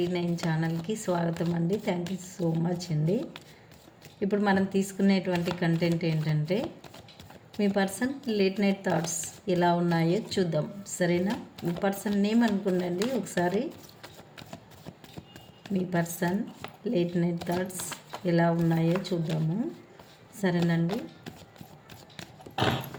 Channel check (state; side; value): identical; both; correlation 1.00